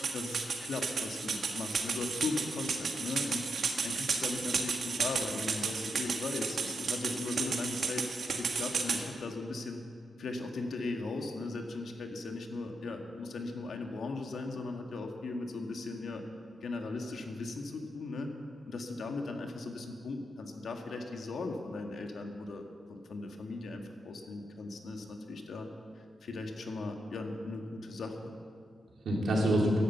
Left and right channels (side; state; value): both; normal; correlation 0.83